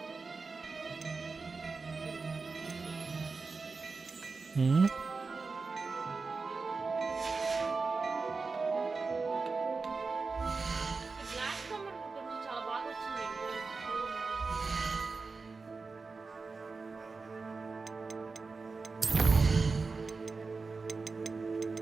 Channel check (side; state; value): left; quieter; 4.3 dB